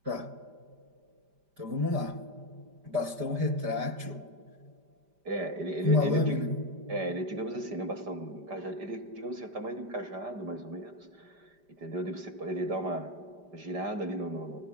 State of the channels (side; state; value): left; late; 5.0 ms